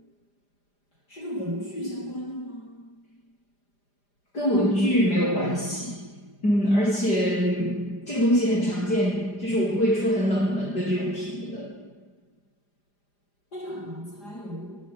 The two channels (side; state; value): right; late; 5.0 ms